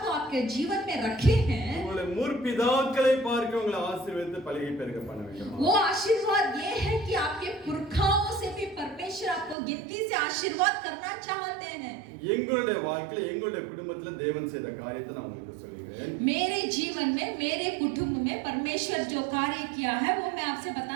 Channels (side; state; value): left; drops out; at 9.6 s